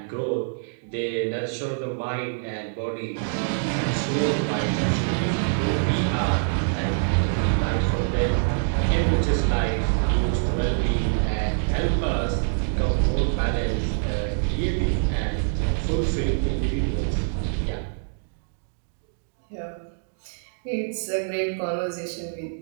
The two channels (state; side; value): silent; left; digital silence